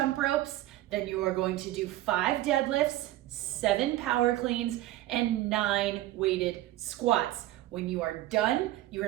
ropes, then you are going to do 5 deadlifts, 7 power cleans, and 9 weighted squats. When you are done,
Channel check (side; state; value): left; quieter; 15.4 dB